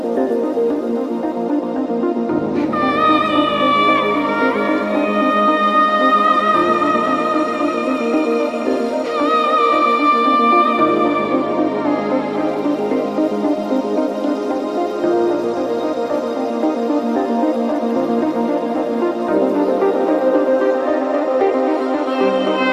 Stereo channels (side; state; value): both; identical; correlation 1.00